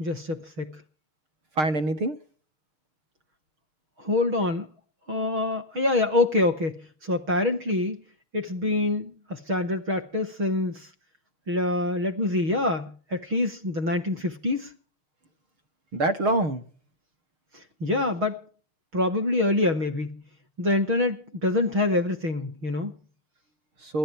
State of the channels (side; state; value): left; late; 6.3 ms